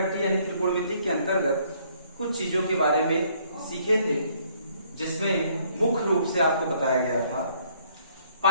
यानी त्रिकोणमिति के अंतर्गत कुछ चीजों के बारे में सीखे थे, जिसमें मुख्य रूप से आपको बताया गया था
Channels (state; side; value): inverted; both; correlation -0.64